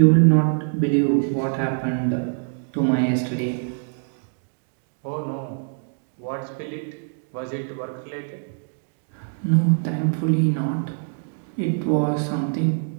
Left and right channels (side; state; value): left; silent; 63 dB below the other